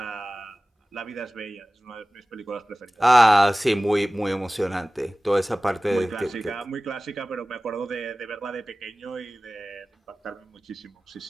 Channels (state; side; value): normal; both; correlation 0.97